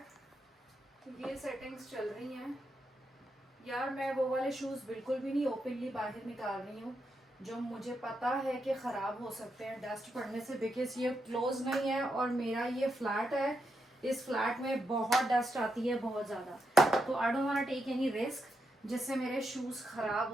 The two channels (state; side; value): normal; both; correlation 0.83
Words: ये सेटिंग्स चल रही हैं यार। मैं वो वाले शूज बिल्कुल भी नहीं ओपनली बाहर निकाल रही हूँ जो मुझे पता है कि ख़राब हो सकते हैं डस्ट पड़ने से, बिकॉज ये क्लोज नहीं है और मेरा ये फ्लैट है, इस फ्लैट में बहुत डस्ट आती है, बहुत ज़्यादा। तो I don't want take any risk जिससे मेरे शूज़ ख़राब